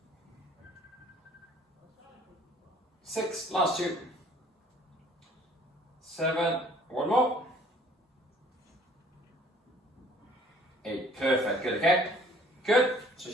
6, last 2. 7, one more. 8, perfect, good, okay? Good, so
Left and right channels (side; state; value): both; normal; correlation 0.56